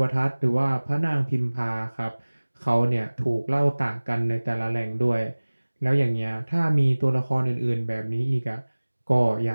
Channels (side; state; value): both; inverted; correlation -1.00